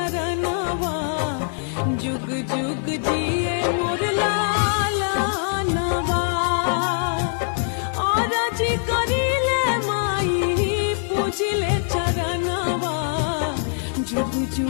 जुग जुग जिए मोर लालनवा और जी करिले माई पूजिले चरणवा जुग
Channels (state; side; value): silent; right; digital silence